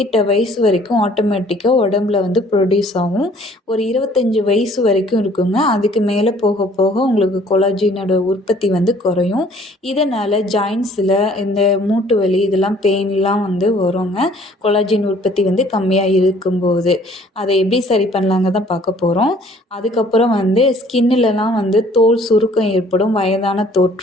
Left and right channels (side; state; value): both; normal; correlation 0.56